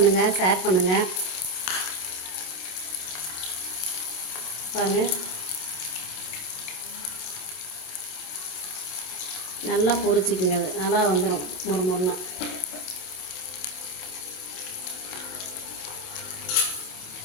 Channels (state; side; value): late; right; 27 ms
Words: ஷேர் பண்ணுங்கள். பாருங்கள், நல்லா பொரிச்சிக்கிங்க. அது நல்லா வந்துடும் மொறுமொறுன்னா.